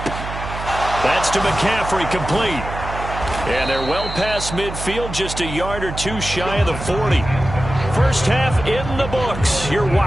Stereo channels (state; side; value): noise; right; hum, 8 dB below the sound